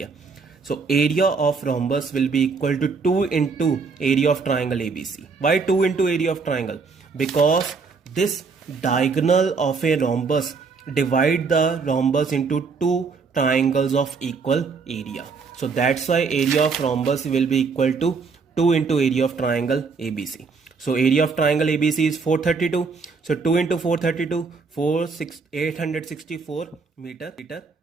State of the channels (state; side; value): quieter; left; 4.9 dB